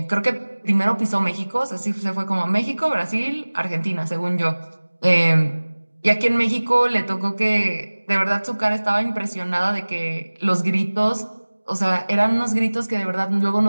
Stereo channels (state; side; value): inverted; both; correlation -1.00